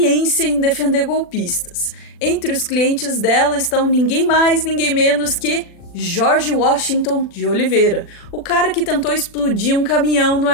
em defender golpistas. Entre os clientes dela estão ninguém mais, ninguém menos que George Washington de Oliveira, o cara que tentou explodir um caminhão no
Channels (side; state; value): right; late; 40 ms